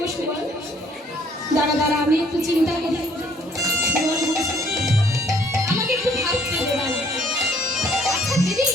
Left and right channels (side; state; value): both; normal; correlation 0.62